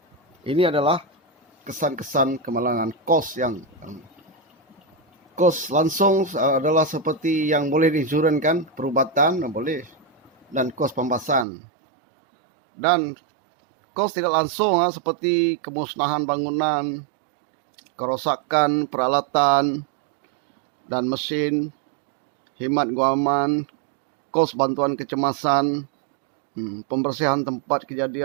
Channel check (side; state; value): left; drops out; at 11.5 s